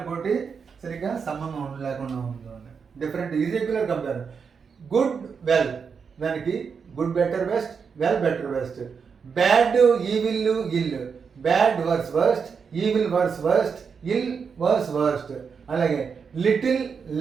సరిగ్గా సంబంధం లేకుండా ఉంటుంది. Different irregular compare. Good well దానికి good better best well better best. Bad evil ill, bad worse worst, evil worse worst, ill worse worst. అలాగే little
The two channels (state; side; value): quieter; left; 6.0 dB